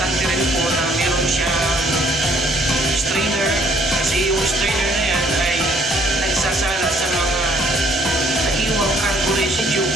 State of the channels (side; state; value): both; normal; correlation 0.63